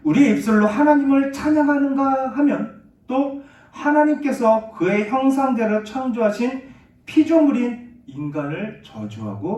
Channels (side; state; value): both; identical; correlation 1.00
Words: 우리의 입술로 하나님을 찬양하는가 하면 또 하나님께서 그의 형상대로 창조하신 피조물인 인간을